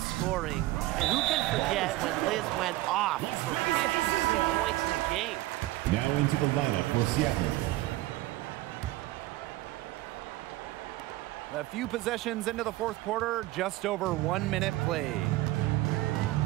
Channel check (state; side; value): quieter; left; 17.6 dB